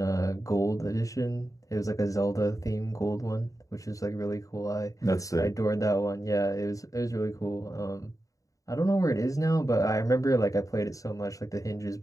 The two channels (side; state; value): right; late; 0.16 ms